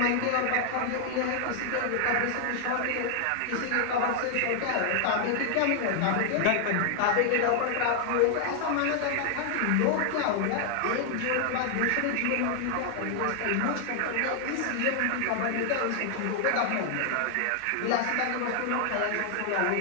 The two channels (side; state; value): both; different; correlation 0.00